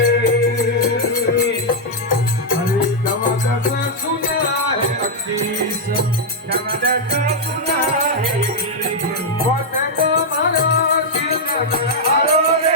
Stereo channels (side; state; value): both; normal; correlation -0.03